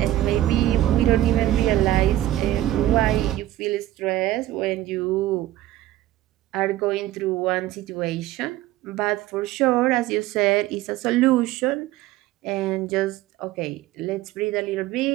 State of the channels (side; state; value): left; quieter; 14.6 dB